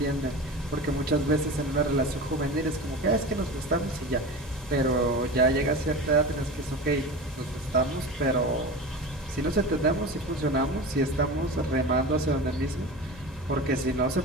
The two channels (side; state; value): both; normal; correlation 0.30